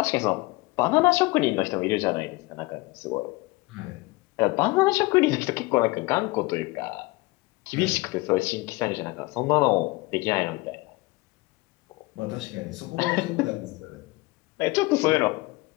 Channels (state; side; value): quieter; right; 22.9 dB